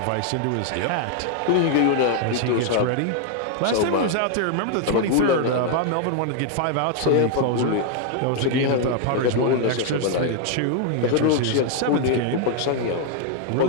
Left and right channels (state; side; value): different; both; correlation 0.00